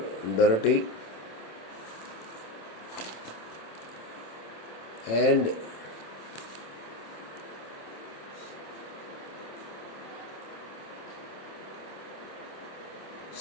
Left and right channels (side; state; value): right; late; 26 ms